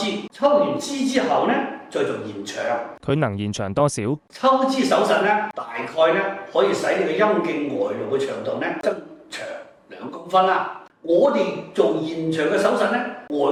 抽完脂之後咧再做延長。佢能延長多少？抽脂手術咧，大概咧可以使你嘅陰莖外露嘅長度咧增長2公分啦。我哋做延長嘅手術咧，外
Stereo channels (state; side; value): identical; both; correlation 1.00